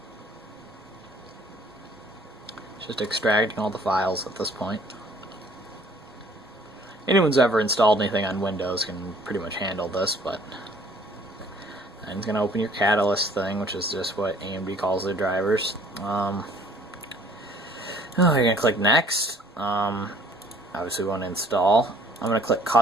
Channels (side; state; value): both; normal; correlation 0.56